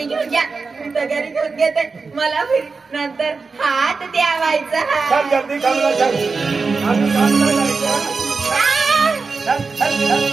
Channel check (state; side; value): quieter; left; 4.4 dB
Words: घेऊन घ्या मी तर घरी घेऊन घेते मला नंतर हात द्यावायचा चल जल्दी कामला चल आम्ही कामला जायचं चल